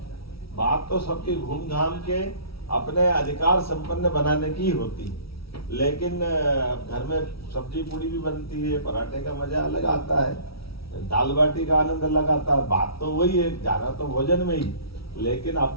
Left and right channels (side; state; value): right; late; 0.76 ms